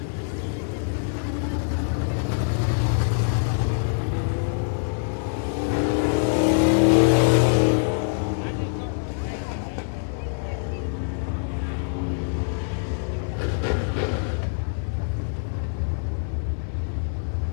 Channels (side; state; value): right; silent; 60 dB below the other